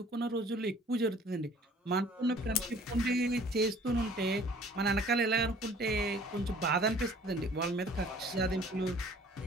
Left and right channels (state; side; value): normal; both; correlation 0.53